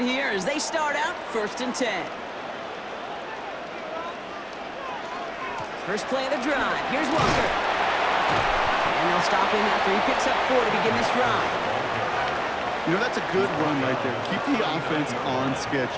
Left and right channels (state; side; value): identical; both; correlation 1.00